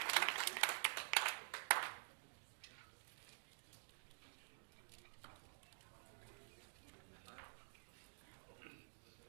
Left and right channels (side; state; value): left; silent; digital silence